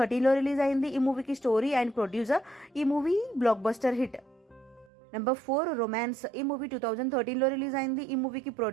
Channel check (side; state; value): left; drops out; at 4.9 s